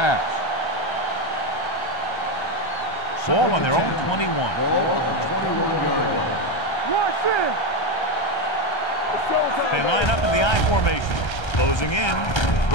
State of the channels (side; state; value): right; late; 1.3 ms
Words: Ball on their own 21. They line up in the I formation. Closing in.